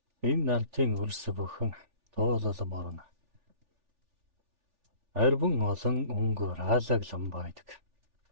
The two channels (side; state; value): left; late; 3.4 ms